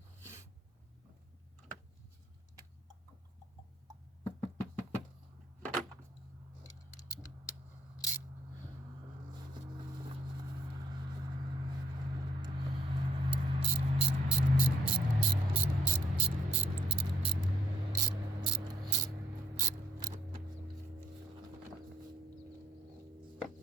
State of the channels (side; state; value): both; normal; correlation 0.66